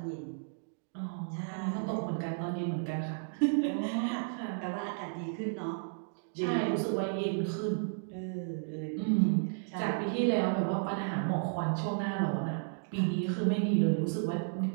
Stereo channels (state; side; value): silent; left; digital silence